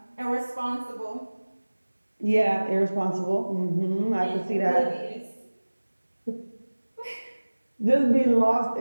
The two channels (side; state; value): both; inverted; correlation -1.00